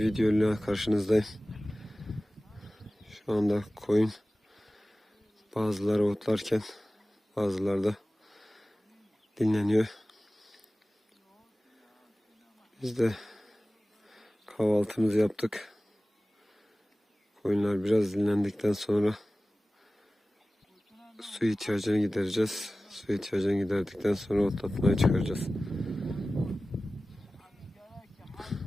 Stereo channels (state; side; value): normal; both; correlation 0.97